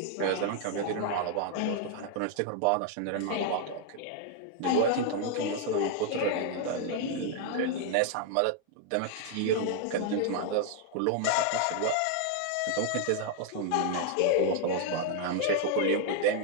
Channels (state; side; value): different; both; correlation 0.00